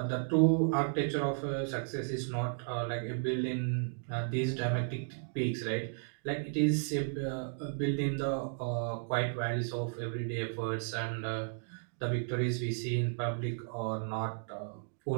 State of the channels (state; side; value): silent; left; digital silence